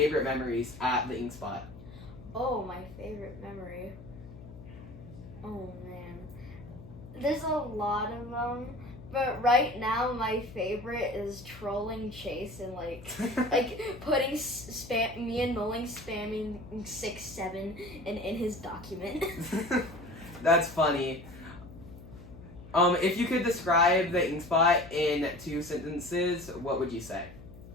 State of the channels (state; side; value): noise; left; hum, 16 dB below the sound